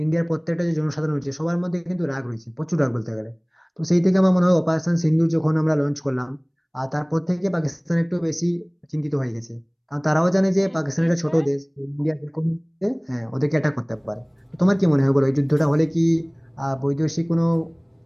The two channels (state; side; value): identical; both; correlation 1.00